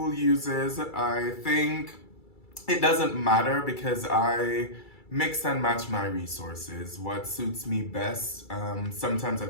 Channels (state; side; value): late; right; 2.3 ms